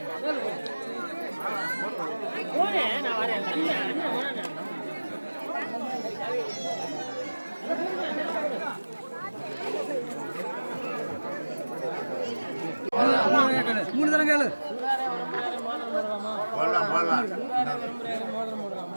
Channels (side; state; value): both; inverted; correlation -1.00